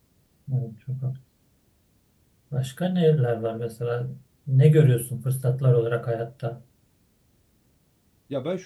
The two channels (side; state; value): both; identical; correlation 1.00